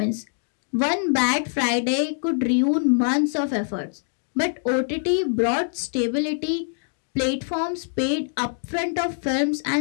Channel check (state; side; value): silent; right; digital silence